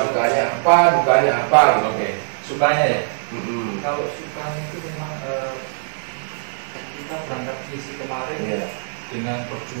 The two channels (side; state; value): left; silent; 65 dB below the other